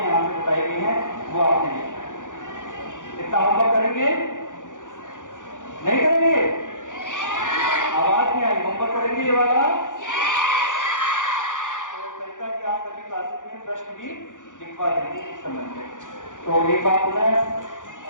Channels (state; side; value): late; right; 0.87 ms